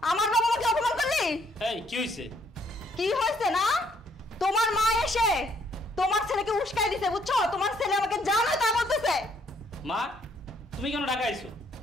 আমার বাবা মাকে অপমান করলি? এই কি হইছে? কি হয়েছে না? তোমার মা এসে তোমার ছেলেকে উস্কাই দিছে, বুঝছো? তোমার ছেলে আমাকে জানো তা বলতেছে। মা, তুমি কেন ঢাকা আইছো?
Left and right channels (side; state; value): both; normal; correlation 0.68